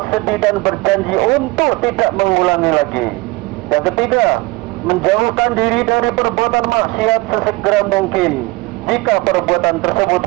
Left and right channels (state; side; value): quieter; left; 22.5 dB